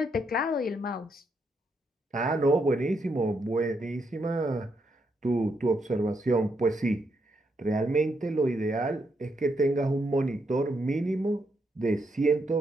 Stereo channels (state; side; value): normal; both; correlation 0.79